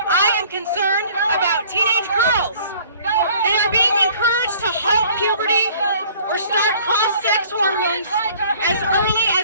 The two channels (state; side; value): inverted; both; correlation -0.53